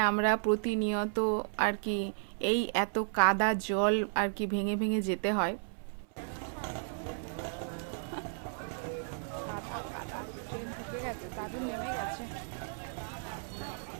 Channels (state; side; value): silent; left; 55 dB below the other